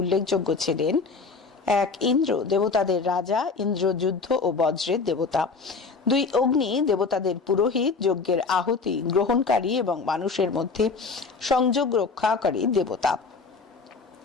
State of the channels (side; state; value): right; quieter; 4.6 dB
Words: ছিলেন 1 ইন্দ্র, দেবতাদের রাজা, ইন্দ্র যুদ্ধ ও বজ্রের দেবতা। 2 অগ্নি, দেবতাদের পুরোহিত, যজ্ঞের আহুতি গ্রহণকারী এবং মানুষের মধ্যে সংযোগ রক্ষাকারী দেবতা।